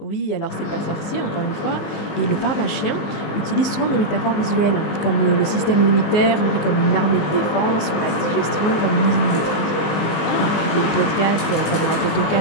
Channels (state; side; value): late; right; 19 ms